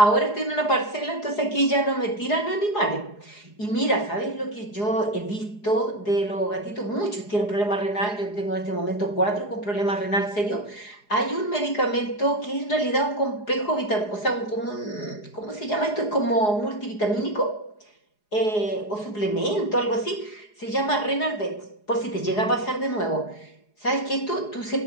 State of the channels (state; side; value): late; right; 4.8 ms